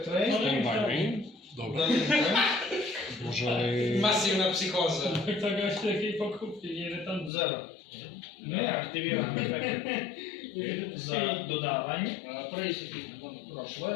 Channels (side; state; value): right; drops out; at 7.3 s